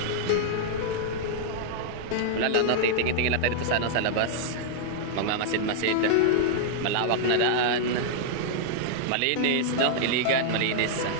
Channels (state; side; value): different; both; correlation -0.01